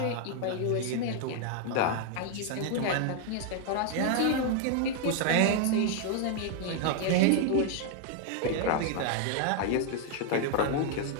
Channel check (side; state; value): both; different; correlation 0.00